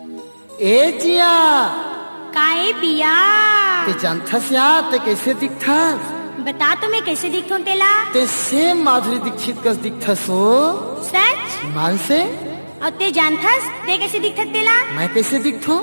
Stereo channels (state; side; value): inverted; both; correlation -1.00